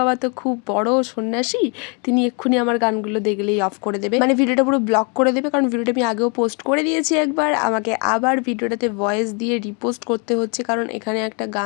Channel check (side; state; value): right; quieter; 35.0 dB